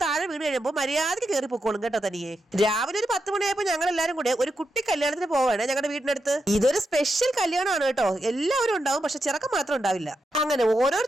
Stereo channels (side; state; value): both; normal; correlation 0.86